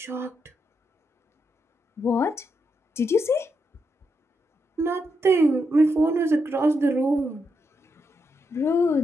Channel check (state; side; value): normal; both; correlation 0.82